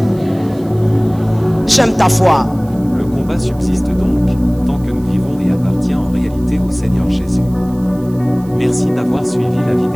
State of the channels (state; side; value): noise; right; hiss, 26 dB below the sound